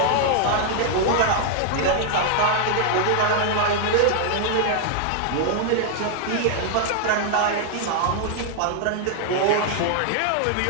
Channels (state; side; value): different; both; correlation 0.00